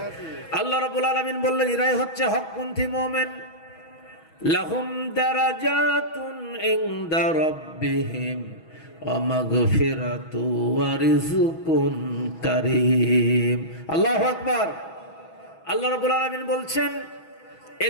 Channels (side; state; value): right; late; 6.2 ms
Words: আল্লাহ রাব্বুল আলামিন বললেন, এরাই হচ্ছে হকপন্থী মুমিন। লাহুম দারাজাতুন ইনদা রাব্বিহিম ওয়া মাগফিরাতু ওয়া রিজকুন কারীম। আল্লাহু আকবার। আল্লাহ রাব্বুল আলামিন বলছেন,